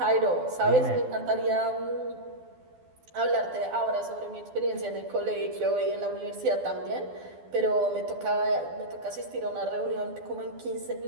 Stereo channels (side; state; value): left; late; 12 ms